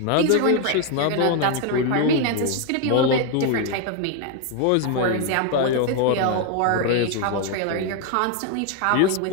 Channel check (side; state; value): both; different; correlation 0.01